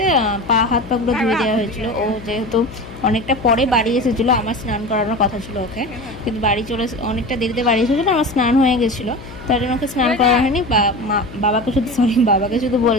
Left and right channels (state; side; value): noise; left; hum, 15 dB below the sound